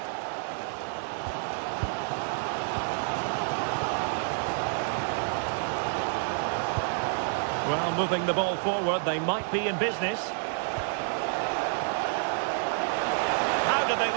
Well, moving the ball forward, they might be in business. How did they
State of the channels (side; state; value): left; silent; 59 dB below the other